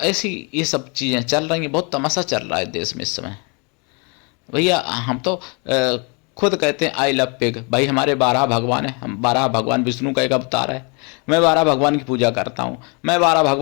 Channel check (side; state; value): right; quieter; 33.2 dB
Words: ऐसी ये सब चीज़ें चल रही हैं, बहुत तमाशा चल रहा है देश में इस समय भैया। हम तो खुद कहते हैं आई लव पिग भाई, हमारे 12 भगवान हैं, हम 12 भगवान, विष्णु का एक अवतार है, मैं 12 भगवान की पूजा करता हूँ, मैं 12